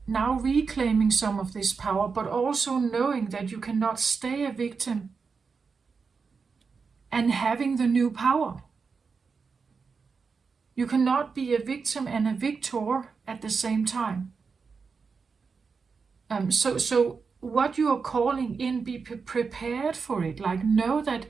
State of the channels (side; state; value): left; quieter; 5.2 dB